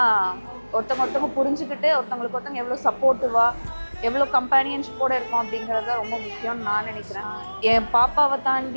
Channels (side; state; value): both; inverted; correlation -1.00